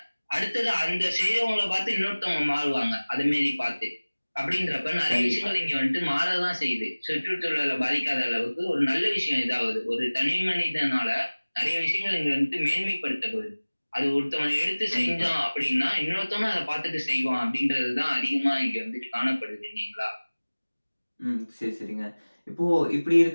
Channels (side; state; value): both; inverted; correlation -1.00